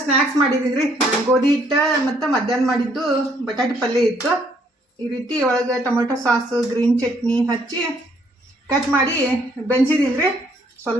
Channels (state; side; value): normal; both; correlation 0.66